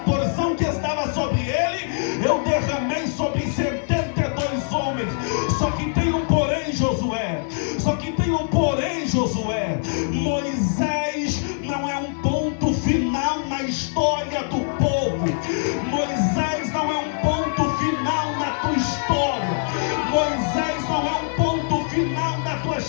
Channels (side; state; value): right; silent; digital silence